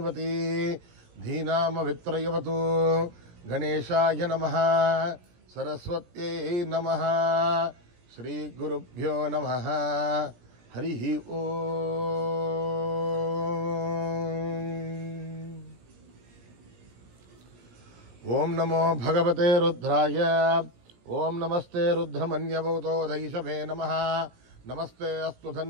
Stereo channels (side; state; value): left; late; 17 ms